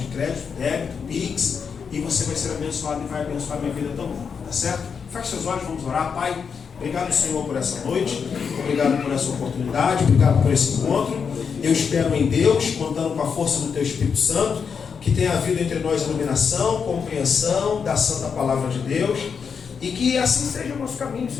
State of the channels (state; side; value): quieter; right; 6.3 dB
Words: crédito, débito, Pix, e você vai ser abençoado e vai abençoar a minha vida também. Tá certo? Feche seus olhos, vamos orar. Pai, obrigado, Senhor, por essa noite. Obrigado por essa oportunidade. Obrigado por esse encontro. Eu espero em Deus, contando com a força do Teu Espírito Santo, que tenha havido entre nós iluminação, compreensão da Santa Palavra de Deus, e que assim seja o nosso caminho,